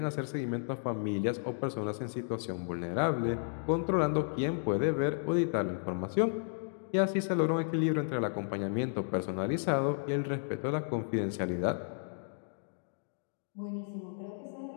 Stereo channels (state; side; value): silent; right; digital silence